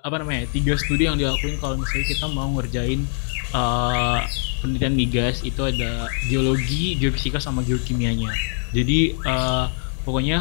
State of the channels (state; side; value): silent; right; digital silence